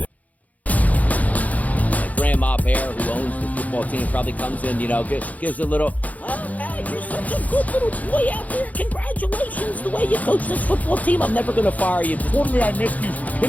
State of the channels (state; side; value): late; right; 0.075 ms